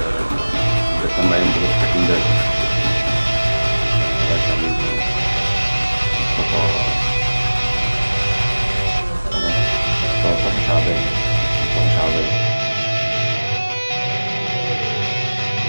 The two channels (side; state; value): both; inverted; correlation -1.00